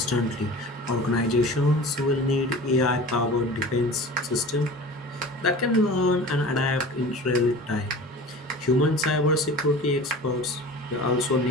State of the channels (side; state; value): both; normal; correlation 0.38